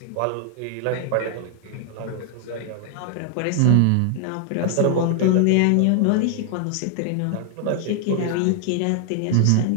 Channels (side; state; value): both; different; correlation 0.00